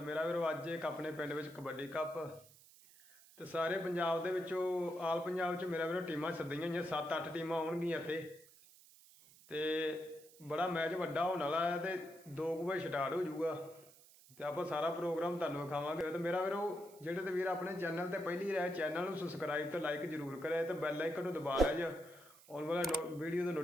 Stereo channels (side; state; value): right; noise; hiss, 23 dB below the sound